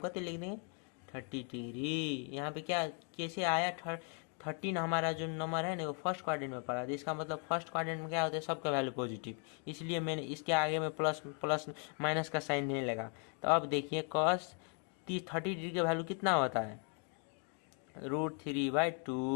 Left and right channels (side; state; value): right; quieter; 38.8 dB